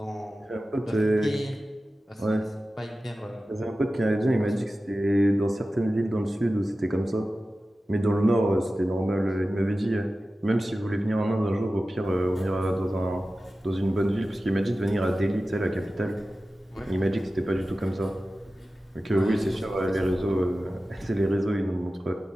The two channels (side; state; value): both; normal; correlation 0.95